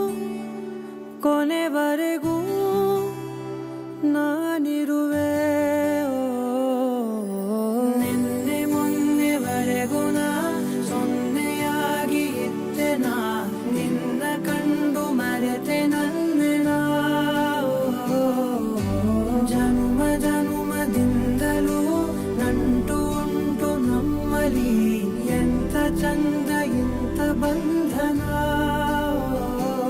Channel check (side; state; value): both; identical; correlation 1.00